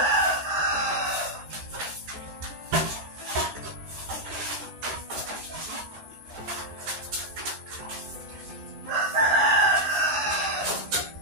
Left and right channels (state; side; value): late; left; 14 ms